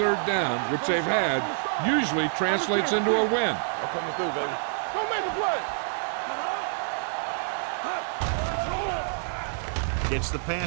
down, which they've had, usually translates into a win. I'm coming through, baby. Don't make a play. Gets the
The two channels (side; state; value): left; silent; 60 dB below the other